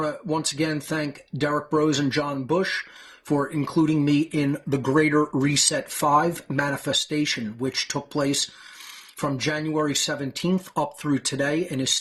to once again thank Derek Brose and John Bush for including me in the Greater Reset 5 manifestation, which took place from January 17th up through today and is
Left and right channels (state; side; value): identical; both; correlation 1.00